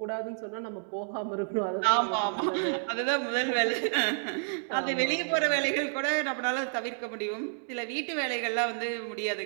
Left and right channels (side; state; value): left; silent; digital silence